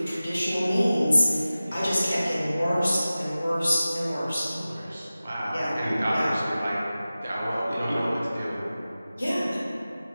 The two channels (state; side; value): inverted; both; correlation -0.96